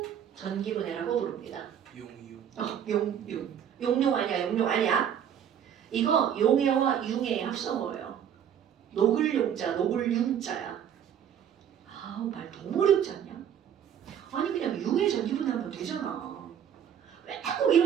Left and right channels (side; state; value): left; quieter; 9.1 dB